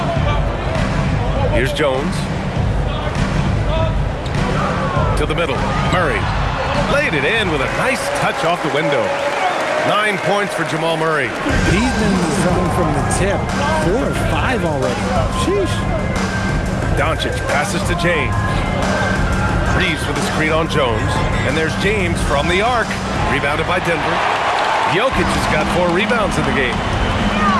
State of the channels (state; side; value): identical; both; correlation 1.00